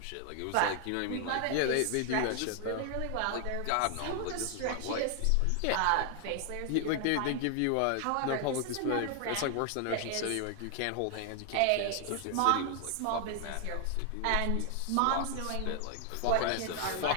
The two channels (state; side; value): different; both; correlation 0.00